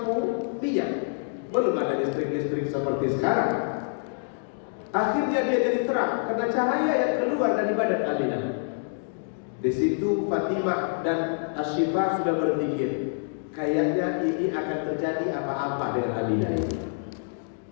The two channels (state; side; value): silent; right; digital silence